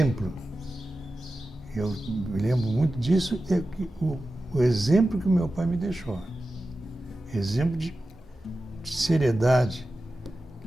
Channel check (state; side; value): normal; both; correlation 0.93